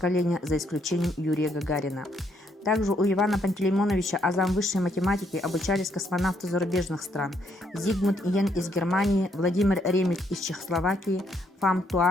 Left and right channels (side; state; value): both; normal; correlation 0.72